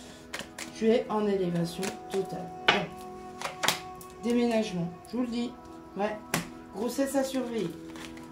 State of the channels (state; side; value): identical; both; correlation 1.00